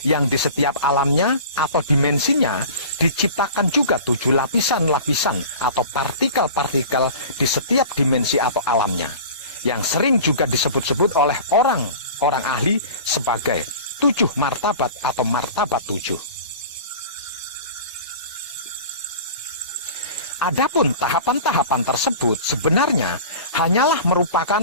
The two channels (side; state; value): both; inverted; correlation -0.38